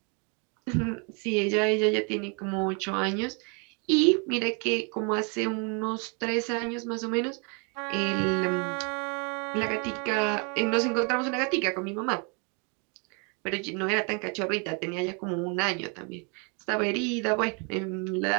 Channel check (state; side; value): quieter; left; 34.9 dB